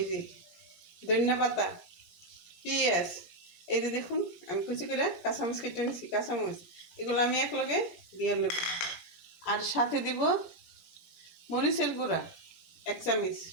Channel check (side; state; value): right; late; 17 ms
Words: যে ধনিয়া পাতা, পেঁয়াজ, এই যে দেখুন আমি কুচি করে কাঁচামরিচ কেটে নিছি। কাঁচামরিচ এগুলো আমি একলগে দিয়ে নেব। আর সাথে দিব মরিচের গুঁড়া 1 চামচ,